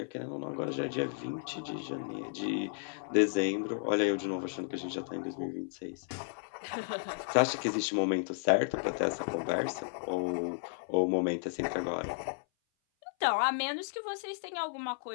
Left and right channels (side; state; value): right; silent; 55 dB below the other